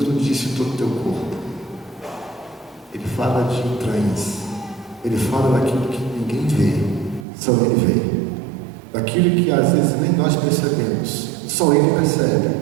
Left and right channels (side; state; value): left; drops out; at 7.2 s